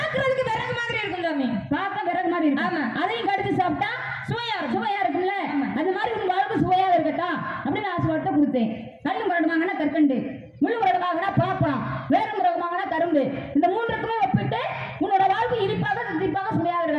விறகு மாதிரி இருக்கும் சாமி. பார்க்க விறகு மாதிரி இருக்கும். ஆமா. அதையும் கடிச்சு சாப்பிட்டா சுவையா இருக்கும்ல? அந்த மாதிரி உன் வாழ்வு சுவையாக இருக்கட்டும் அப்படின்னு ஆசீர்வாதத்தை கொடுத்தேன். கல்லு முரகமாகனா கற்கண்டு, முள்ளு முரகமாகனா பலாப்பழம், வேறு முரகமாகனா கரும்பு. இந்த 3க்குமே ஒப்பிட்டு உன்னோட வாழ்வு இனிப்பாக தித்திப்பாக சுவையாக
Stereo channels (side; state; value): both; identical; correlation 1.00